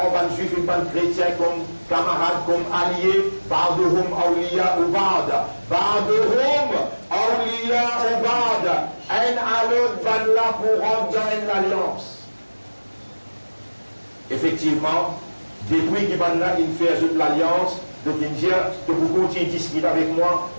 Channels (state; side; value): inverted; both; correlation -1.00